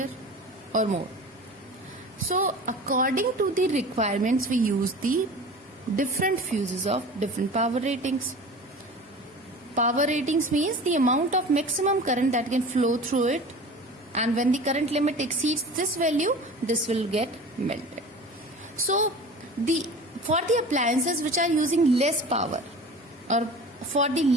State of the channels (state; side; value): normal; both; correlation 0.38